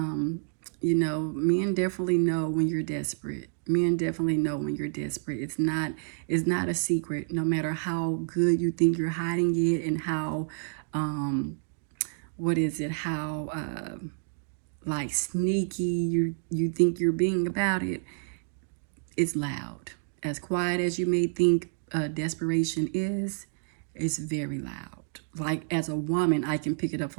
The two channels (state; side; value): silent; left; digital silence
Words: definitely know when you're desperate. Men definitely know when you're desperate. It's not a secret. No matter how good you think you're hiding it, and how how like sneaky you think you're being about it, it's loud. As quiet as you may think desperation is, it's very loud. Like, as a woman, I can pick it up